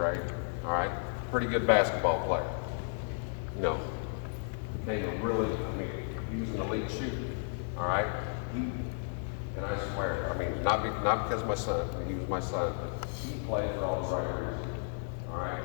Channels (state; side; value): silent; right; 56 dB below the other